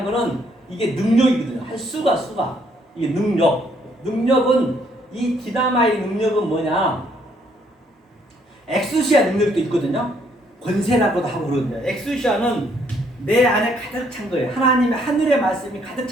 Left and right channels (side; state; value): both; normal; correlation 0.68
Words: 거는 이게 능력이거든요. 할 수가. 이게 능력은, 이 디나마이 능력은 뭐냐? 엑수시아 능력도 있거든요. 권세라고도 하고 그러거든요. 엑수시아는 내 안에 가득 찬 거예요. 하나님의 하늘의 말씀이 가득